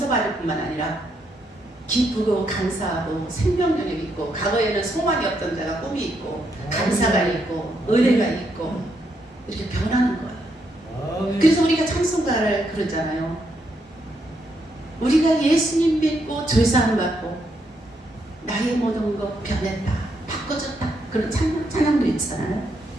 뿐만 아니라 기쁘고 감사하고 생명력이 있고 과거에는 소망이 없던 자가 꿈이 있고 감사가 있고 은혜가 있고 이렇게 변하는 거예요. 그래서 우리가 찬송가를 그러잖아요. 우리가 예수님 믿고 죄사함 받고 나의 모든 것 변했다 바꿔졌다 그런 찬양도 있잖아요.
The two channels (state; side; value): normal; both; correlation 0.78